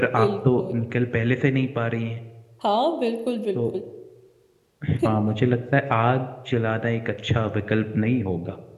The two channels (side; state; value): both; identical; correlation 1.00